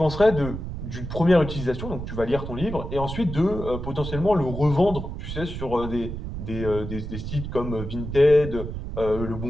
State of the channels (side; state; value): right; noise; rumble, 7 dB below the sound